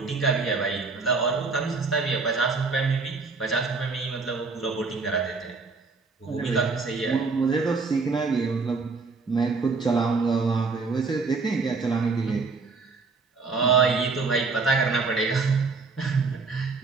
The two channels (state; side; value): quieter; left; 4.3 dB